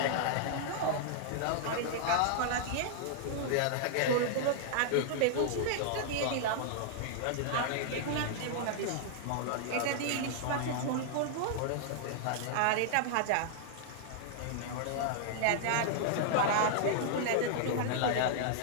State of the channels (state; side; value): different; both; correlation -0.01